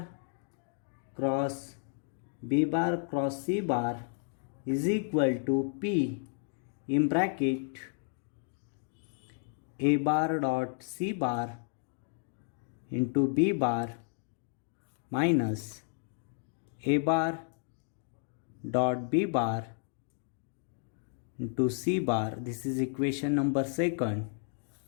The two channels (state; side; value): silent; right; 56 dB below the other